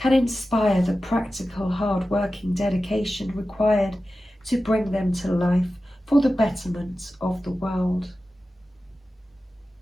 inspire the practical, hard-working dedication required to bring them to life for the betterment of the world.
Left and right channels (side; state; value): both; normal; correlation 0.94